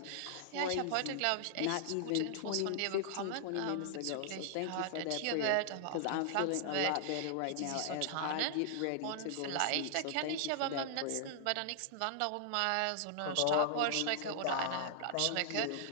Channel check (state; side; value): different; both; correlation -0.01